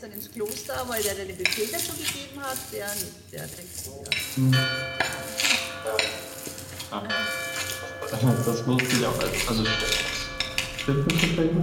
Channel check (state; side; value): identical; both; correlation 1.00